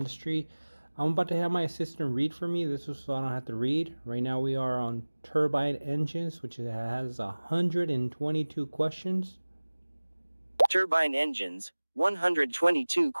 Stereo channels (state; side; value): inverted; both; correlation -1.00